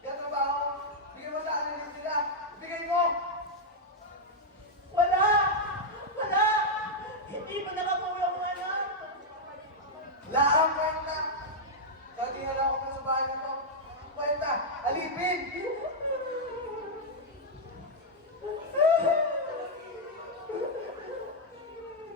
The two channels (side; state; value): both; normal; correlation -0.03